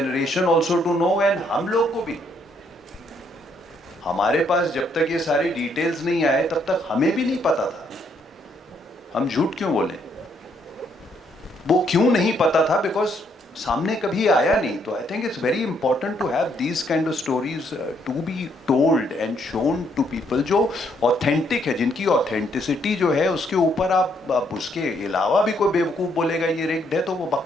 also to know, and हम लोग को भी. हमारे पास जब तक ये सारी डिटेल्स नहीं आए तब तक हमें भी नहीं पता था. हम झूठ क्यों बोले, वो क्यों नहीं पता था, बिकॉज सामने कभी आया नहीं. तो I think it's very important to have these kind of stories to be told and shown to people जो ऑथेंटिक है, जिनकी ऑथेंटिसिटी जो है उसके ऊपर आप उसके अलावा भी कोई बेवकूफ़ बोलेगा ये रिग्ड है तो वो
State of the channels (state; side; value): normal; both; correlation 0.71